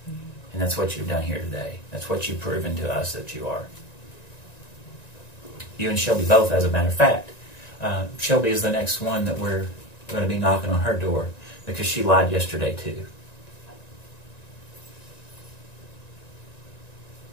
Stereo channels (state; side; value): late; right; 1.9 ms